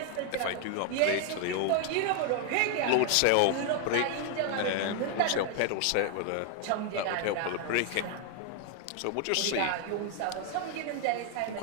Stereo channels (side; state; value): both; different; correlation 0.00